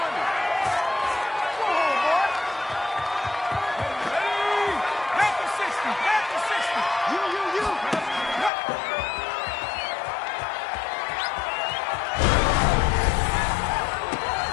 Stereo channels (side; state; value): right; drops out; at 8.5 s